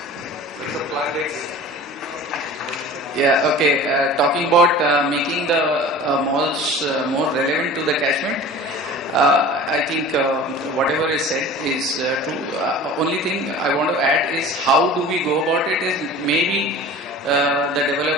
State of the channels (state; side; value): normal; both; correlation 0.40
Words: Yeah, okay. Talking about making the malls more relevant to the catchment, I think whatever is said is true. Only thing I want to add is how do we go about it is maybe the